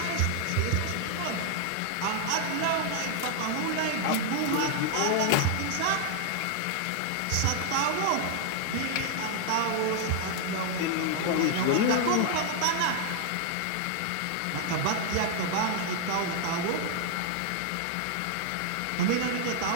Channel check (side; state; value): both; different; correlation 0.00